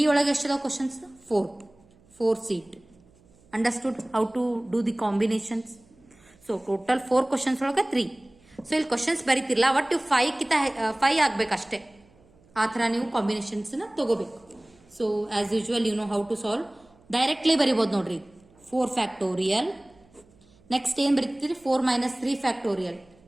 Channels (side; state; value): right; noise; hum, 30 dB below the sound